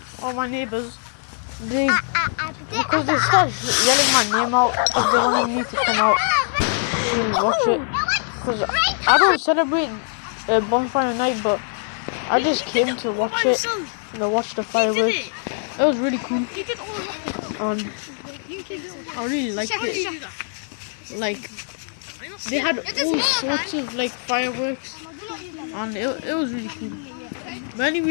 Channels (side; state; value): right; silent; 56 dB below the other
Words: or my neighbors, because they start yelling my name out because they wanted me to come out to watch it. Because I don't celebrate bonfire night, but I just came to watch it. Watch the fireworks. It was really cool. And I really liked it. Like, they had all sorts of like fireworks, and it was really cool. But